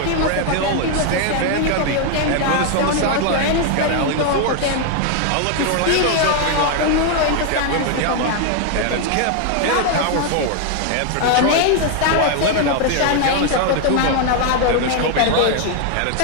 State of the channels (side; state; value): both; different; correlation 0.00